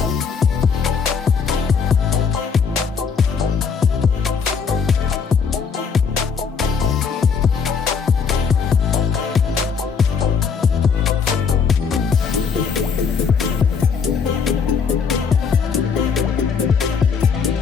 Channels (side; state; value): right; quieter; 6.0 dB